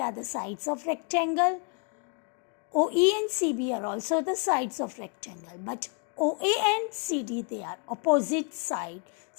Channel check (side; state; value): right; quieter; 37.1 dB